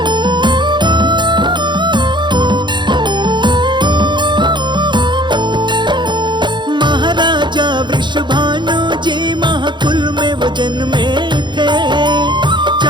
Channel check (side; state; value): left; late; 0.22 ms